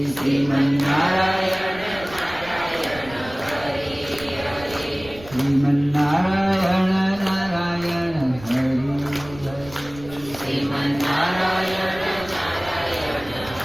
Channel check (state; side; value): noise; right; rumble, 18 dB below the sound